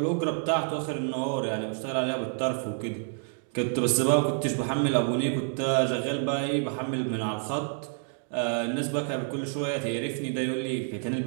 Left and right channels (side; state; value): left; silent; 57 dB below the other